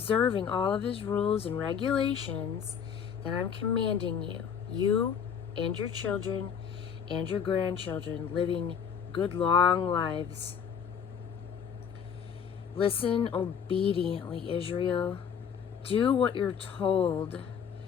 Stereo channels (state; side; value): quieter; right; 7.5 dB